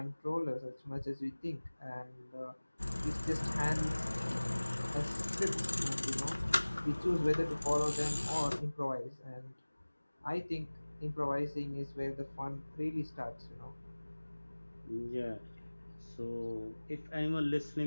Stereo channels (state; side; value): inverted; both; correlation -1.00